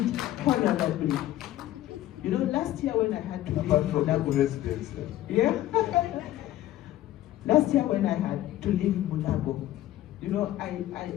honorably. Last year when I had to leave Mulabo residence. Yeah. Last year when I had to leave Mulabo,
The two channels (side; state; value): right; quieter; 14.0 dB